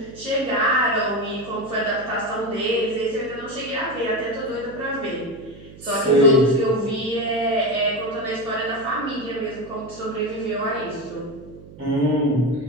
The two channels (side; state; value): right; noise; hum, 18 dB below the sound